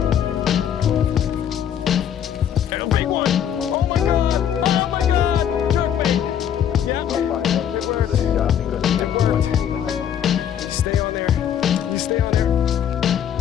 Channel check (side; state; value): right; quieter; 9.3 dB